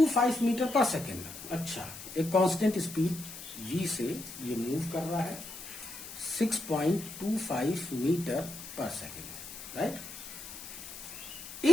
metre per second. अच्छा, एक कांस्टेंट स्पीड v से ये मूव कर रहा है 6.25 metre per second, right.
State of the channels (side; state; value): left; noise; hiss, 12 dB below the sound